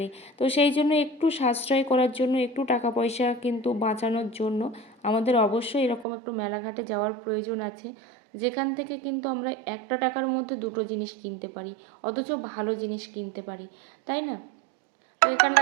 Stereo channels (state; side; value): drops out; left; at 6.1 s